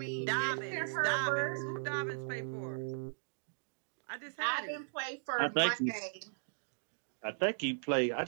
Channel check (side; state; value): left; silent; digital silence